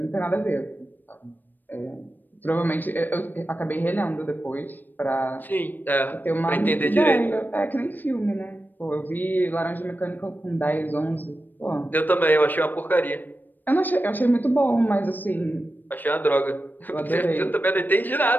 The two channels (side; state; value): right; late; 0.090 ms